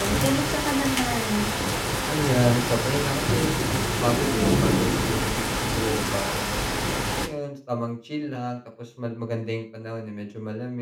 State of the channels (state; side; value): identical; both; correlation 1.00